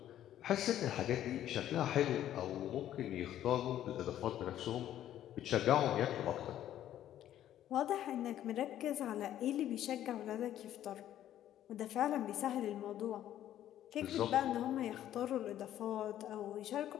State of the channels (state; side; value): quieter; right; 11.9 dB